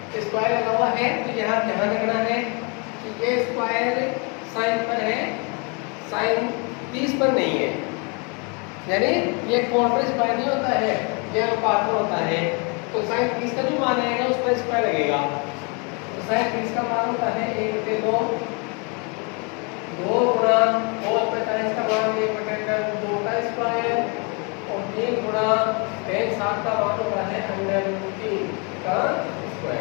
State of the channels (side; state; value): right; quieter; 33.3 dB